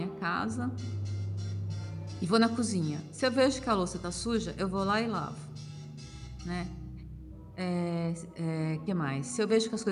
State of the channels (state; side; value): identical; both; correlation 1.00